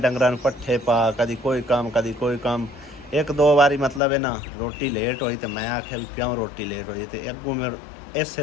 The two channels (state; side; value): drops out; right; at 4.0 s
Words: ਡੰਗਰਾਂ ਨੂੰ ਪੱਠੇ ਪਾ, ਕਦੀ ਕੋਈ ਕੰਮ। 1-2 ਵਾਰੀ ਮਤਲਬ ਹੈ ਨਾ ਰੋਟੀ ਲੇਟ ਹੋਈ ਤੇ ਮੈਂ ਆਖਿਆ ਵੀ ਕਿਉਂ ਰੋਟੀ ਲੇਟ ਹੋਈ, ਤੇ ਅੱਗੋਂ ਮੈਂ